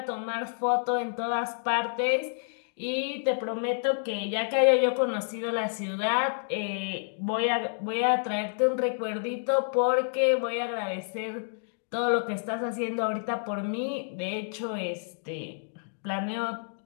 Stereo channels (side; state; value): right; silent; digital silence